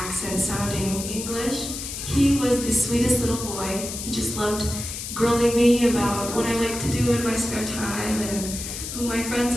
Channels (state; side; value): noise; left; hiss, 7 dB below the sound